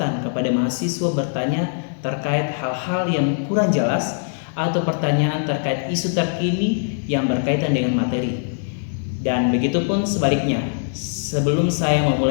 kepada mahasiswa bertanya terkait hal-hal yang kurang jelas atau pertanyaan terkait isu terkini yang berkaitan dengan materi. Dan begitupun sebaliknya, sebelum saya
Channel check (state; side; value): silent; right; digital silence